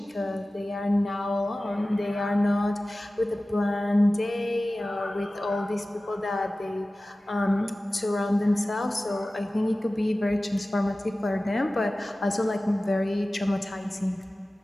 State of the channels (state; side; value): normal; both; correlation 0.96